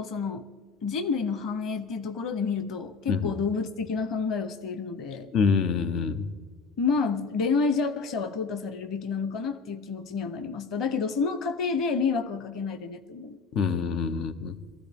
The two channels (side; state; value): right; quieter; 4.8 dB